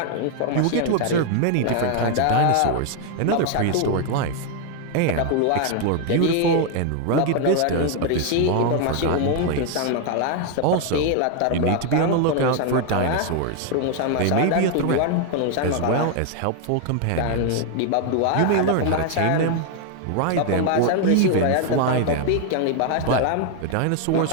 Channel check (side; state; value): both; different; correlation 0.00